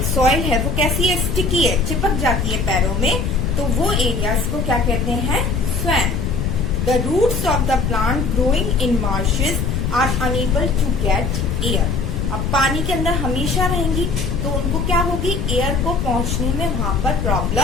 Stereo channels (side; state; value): left; noise; rumble, 1 dB below the sound